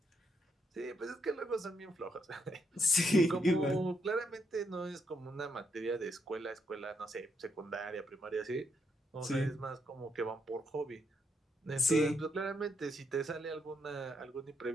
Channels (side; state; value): both; normal; correlation 0.77